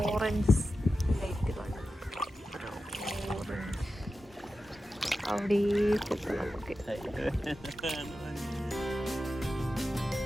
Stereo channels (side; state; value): both; normal; correlation 0.92